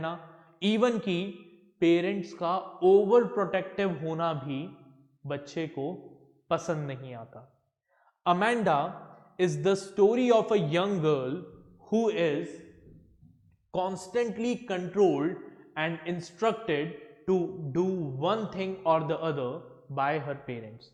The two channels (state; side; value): identical; both; correlation 1.00